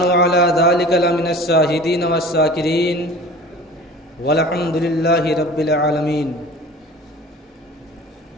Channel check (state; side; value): normal; both; correlation 0.41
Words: علی ذلک لمن الشاہدین والشاکرین، والحمد للہ رب العالمین۔